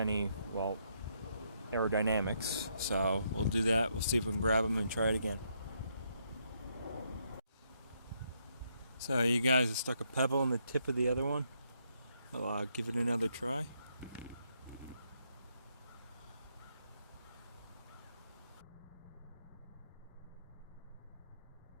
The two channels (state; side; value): inverted; both; correlation -0.75